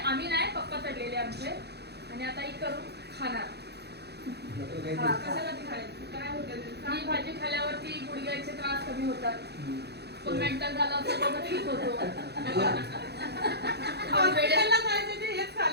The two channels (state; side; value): late; left; 0.48 ms